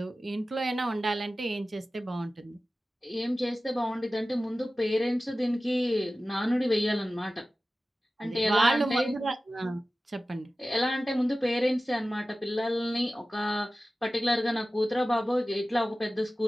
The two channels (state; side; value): normal; both; correlation 0.95